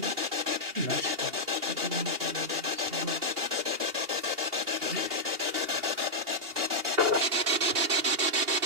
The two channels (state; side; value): late; left; 2.8 ms